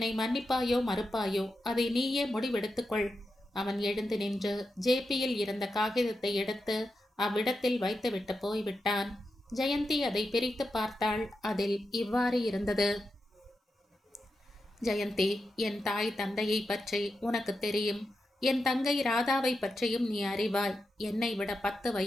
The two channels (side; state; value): both; normal; correlation 0.88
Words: மன்னிப்பாயோ மறுப்பாயோ அதை நீயே முடிவெடுத்துக்கொள். அவன் எழுந்து நின்று ஜேபியில் இருந்த காகிதத்தை எடுத்து அவ்விடத்தில் வைத்துவிட்டு போய்விட்டான். ஜெயந்தி அதை பிரித்து பார்த்தாள். அதில் இவ்வாறு இருந்தது. ஜெயந்தி, என் தாய் தந்தையை பற்றி உனக்கு தெரியும். என் தங்கை ராதாவை பற்றியும் நீ அறிவாய். என்னை விட 10